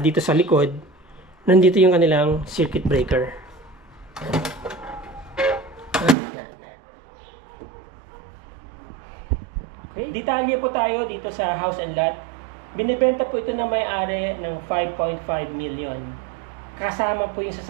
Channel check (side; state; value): left; drops out; at 6.2 s